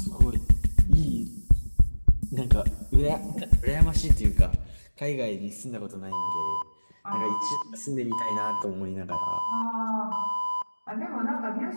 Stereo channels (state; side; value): inverted; both; correlation -1.00